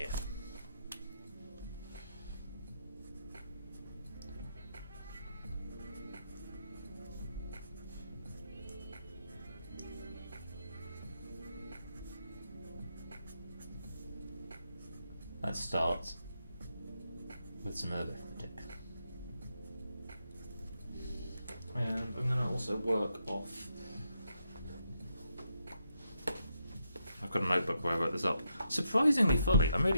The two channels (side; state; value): both; inverted; correlation -0.81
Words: Let's start with some arithmetic. And I'm going to also work off. I've got a notebook where I wrote this up. Surprisingly fully, I'm